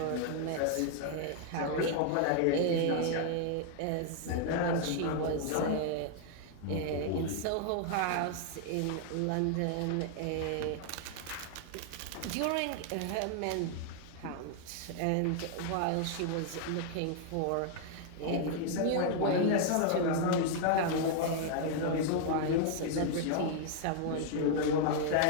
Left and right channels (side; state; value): both; different; correlation 0.00